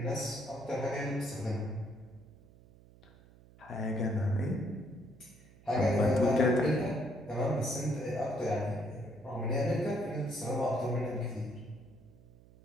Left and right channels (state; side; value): noise; right; hum, 24 dB below the sound